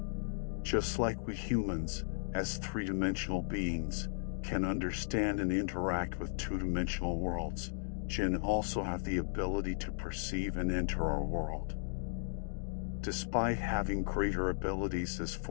Just like we humans, as three-dimensional beings, can understand and interact with two-dimensional worlds, jinn also have the ability to perceive and enter our world. Despite having greater abilities as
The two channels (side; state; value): right; silent; digital silence